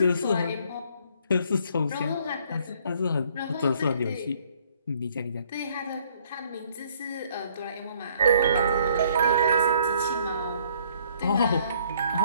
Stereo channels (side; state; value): both; inverted; correlation -0.63